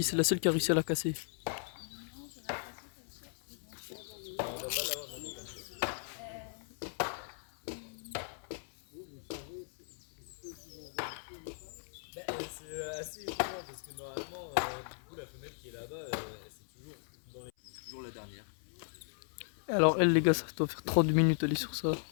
c'est la seule qui a réussi à la casser. C'est assez étonnant parce que normalement, du coup, la femelle qui est là-bas, c'est toujours la dernière. Alors elle les gars, ça doit faire 30 minutes aller sur ça.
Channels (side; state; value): right; silent; 53 dB below the other